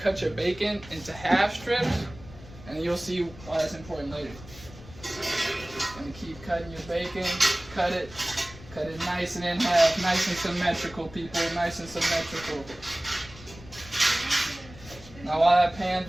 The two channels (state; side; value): noise; left; rumble, 18 dB below the sound